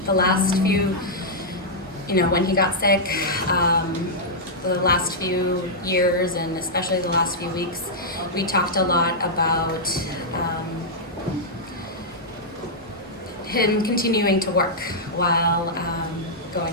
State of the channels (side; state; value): both; normal; correlation -0.08